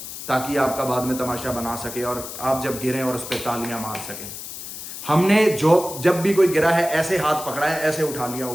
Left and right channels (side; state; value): left; noise; hiss, 10 dB below the sound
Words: ताकि आपका बाद में तमाशा बना सके और आप जब गिरें और उस पर तालियां मार सकें। हमने जब भी कोई गिरा है ऐसे हाथ पकड़ा है, ऐसे उठा लिया